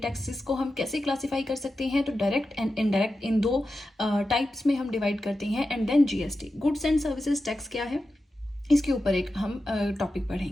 को हम कैसे क्लासिफाई कर सकते हैं। तो डायरेक्ट एंड इनडायरेक्ट इन दो टाइप्स में हम डिवाइड करते हैं। And then GST, goods and services tax क्या है, इसके ऊपर एक हम टॉपिक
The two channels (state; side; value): normal; both; correlation 0.91